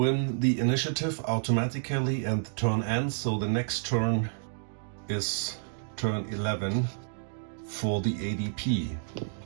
the initiative automatically and the turn ends, so the next turn is turn 11 for the ADP.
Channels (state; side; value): silent; left; digital silence